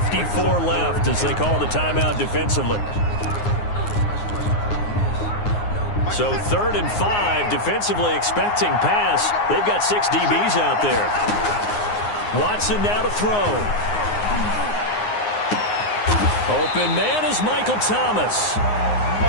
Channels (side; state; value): right; late; 9.6 ms